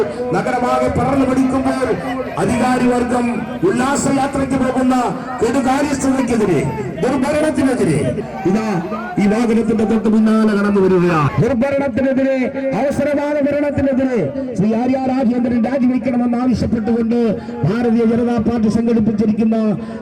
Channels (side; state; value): both; identical; correlation 1.00